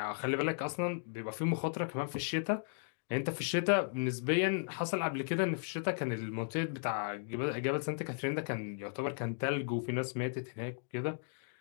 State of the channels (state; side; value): silent; right; digital silence